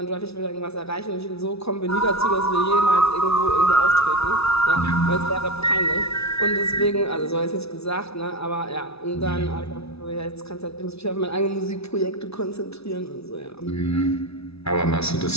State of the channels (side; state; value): right; late; 0.79 ms